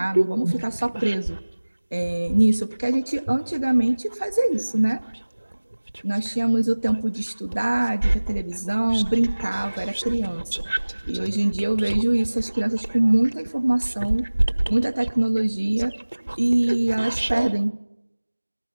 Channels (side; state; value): both; inverted; correlation -1.00